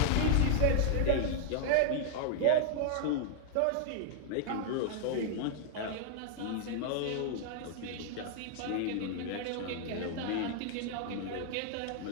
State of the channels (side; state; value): both; different; correlation 0.00